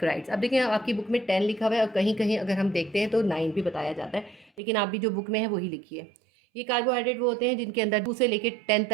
अब देखिए आपकी बुक में 10 लिखा हुआ है और कहीं कहीं अगर हम देखते हैं तो 9 भी बताया जाता है, लेकिन आप भी जो बुक में है वही लिखिए। ये कार्बोहाइड्रेट वो होते हैं जिनके अंदर 2 से लेकर 10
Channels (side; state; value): left; drops out; at 4.6 s